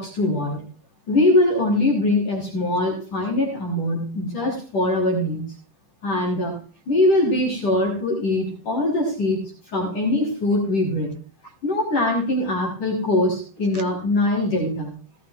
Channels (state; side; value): late; right; 10 ms